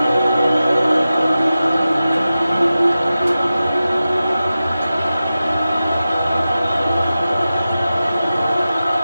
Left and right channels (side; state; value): both; inverted; correlation -0.94